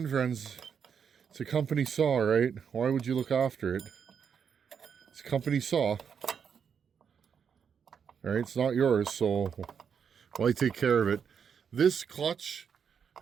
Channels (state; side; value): quieter; left; 7.1 dB